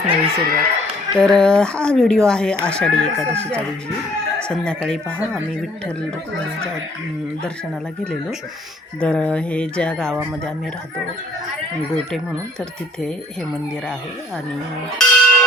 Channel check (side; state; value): both; normal; correlation 0.59